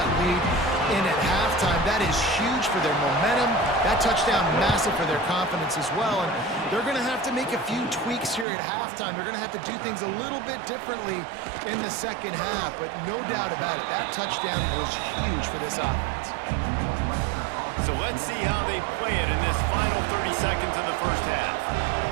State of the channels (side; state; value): left; drops out; at 8.5 s